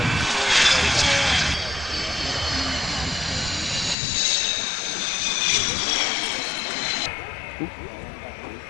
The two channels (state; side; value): drops out; right; at 4.0 s